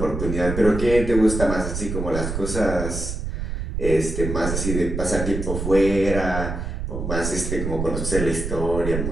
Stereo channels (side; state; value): right; noise; rumble, 4 dB below the sound